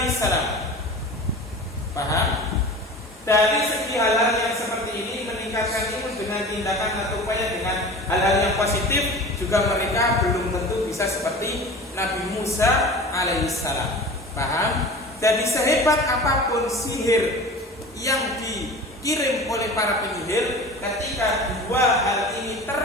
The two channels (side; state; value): both; normal; correlation 0.37